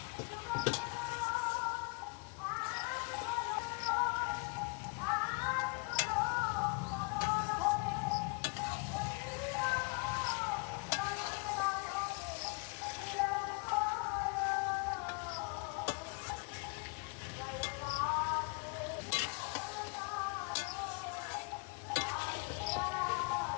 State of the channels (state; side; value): quieter; right; 33.4 dB